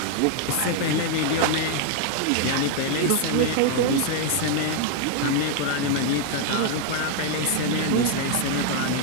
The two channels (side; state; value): both; different; correlation 0.00